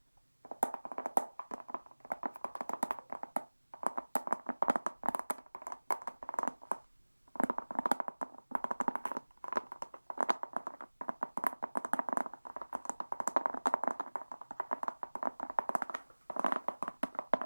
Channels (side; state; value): both; inverted; correlation -1.00